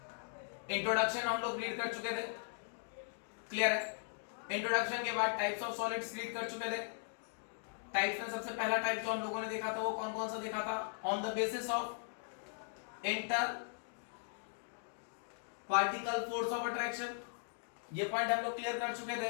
इंट्रोडक्शन हम लोग रीड कर चुके थे, क्लियर है। इंट्रोडक्शन के बाद टाइप्स ऑफ सॉलिड्स रीड कर चुके थे। टाइप्स में सबसे पहला टाइप जो हम लोगों ने देखा था वो कौन कौन सा देखा था, on the basis of inter particle force of attraction. ये पॉइंट हम लोग क्लियर कर चुके थे,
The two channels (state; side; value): silent; right; digital silence